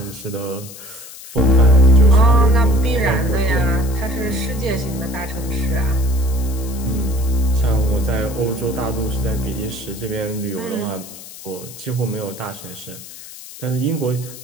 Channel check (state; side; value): noise; left; hiss, 15 dB below the sound